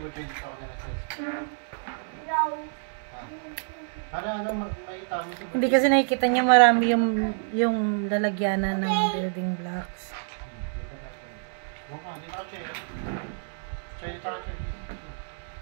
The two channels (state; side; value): silent; left; digital silence